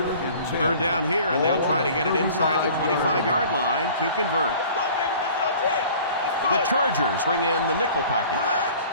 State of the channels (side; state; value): both; inverted; correlation -0.47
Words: Third down here, and they'll try to get it inside the 25-yard line to convert. The Chargers bring in the nickel package.